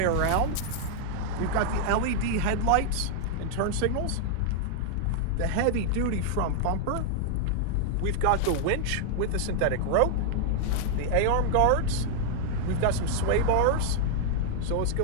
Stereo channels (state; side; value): different; both; correlation -0.01